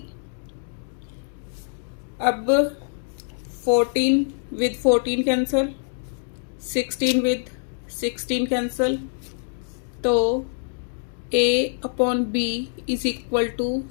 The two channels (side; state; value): right; silent; digital silence